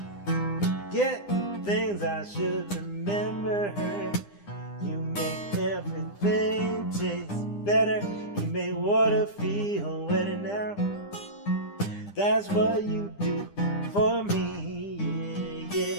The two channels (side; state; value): right; late; 9.9 ms